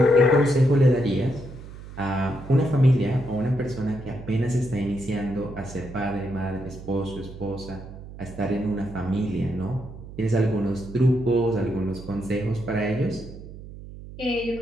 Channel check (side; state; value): right; noise; hum, 14 dB below the sound